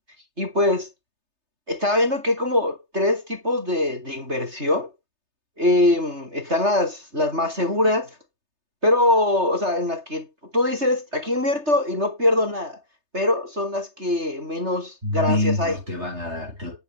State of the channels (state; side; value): late; left; 3.3 ms